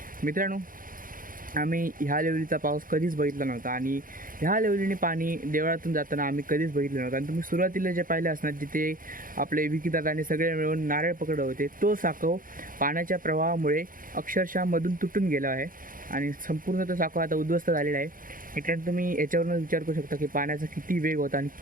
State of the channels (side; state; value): left; late; 0.40 ms